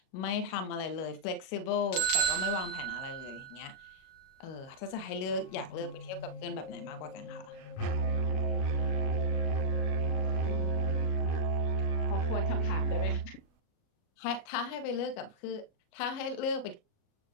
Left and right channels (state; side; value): late; right; 37 ms